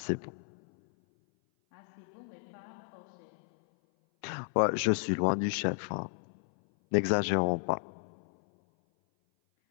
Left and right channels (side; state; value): right; silent; 56 dB below the other